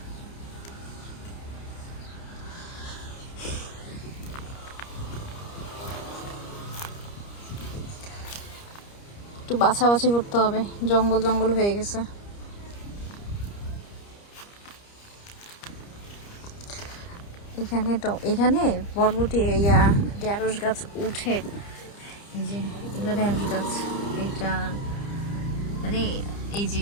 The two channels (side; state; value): right; late; 30 ms